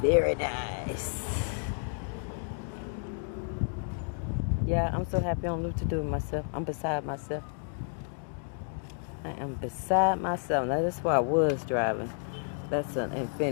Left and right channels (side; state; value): right; silent; 57 dB below the other